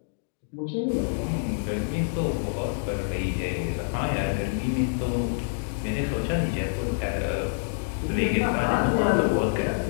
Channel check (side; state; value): right; silent; digital silence